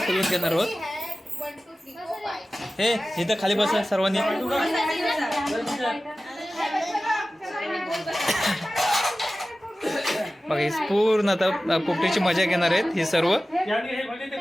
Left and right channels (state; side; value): normal; both; correlation 0.96